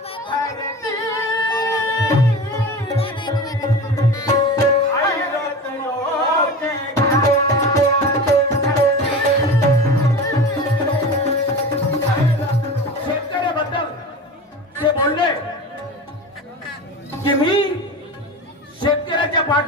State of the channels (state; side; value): normal; both; correlation 0.31